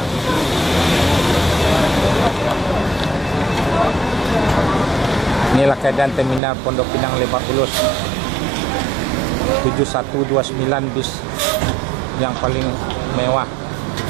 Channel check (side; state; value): left; drops out; at 6.4 s